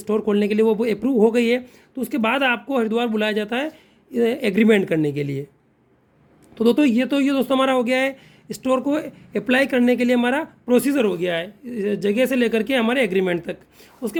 खोलने के लिए, वो अप्रूव हो गई है, तो उसके बाद आपको हरिद्वार बुलाया जाता है एग्रीमेंट करने के लिए। तो दोस्तों हमारा हो गया है स्टोर को अप्लाई करने के लिए हमारा प्रोसीजर हो गया है, जगह से लेकर के हमारे एग्रीमेंट तक। उसके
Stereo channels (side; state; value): both; identical; correlation 1.00